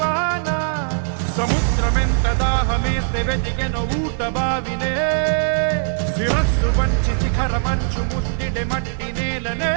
సముద్రమెంత దాహమేస్తే వెతికెన ఊట బావినే శిరస్సు వంచి శిఖర మంచు ముద్దిడే మట్టి నేలనే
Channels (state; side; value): silent; left; digital silence